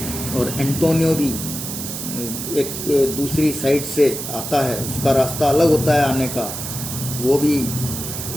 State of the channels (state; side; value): noise; right; hiss, 6 dB below the sound